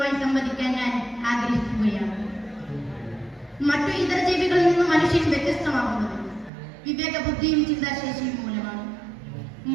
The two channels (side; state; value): left; drops out; at 6.5 s